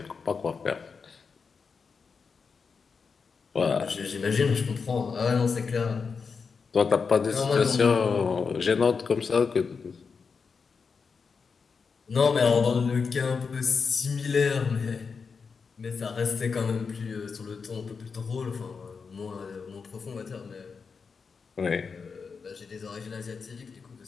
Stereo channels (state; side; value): quieter; right; 5.3 dB